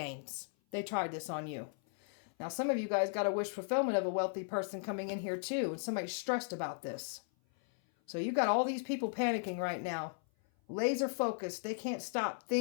They tried this on you. Now, some of you guys got a wish fulfillment of a wealthy person coming in here too, and somebody's stressed about this. So you got all these people panicking right now. Laser focused. They can't stop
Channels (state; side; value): silent; right; 54 dB below the other